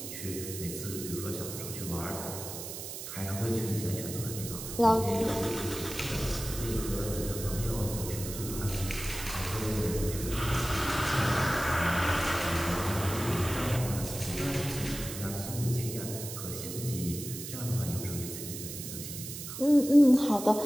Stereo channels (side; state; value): right; noise; hiss, 8 dB below the sound